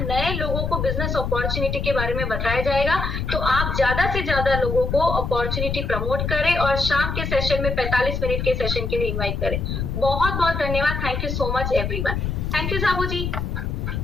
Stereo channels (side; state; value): left; noise; rumble, 2 dB below the sound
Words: लोगों को बिजनेस अपॉर्चुनिटी के बारे में बताया जाएगा। तो आप ज्यादा से ज्यादा लोगों को अपॉर्चुनिटी प्रमोट करें और शाम के सेशन में 45 मिनट के सेशन के लिए इन्वाइट करें। बहुत बहुत धन्यवाद। Thank you so much everyone. Thank you Sabu ji,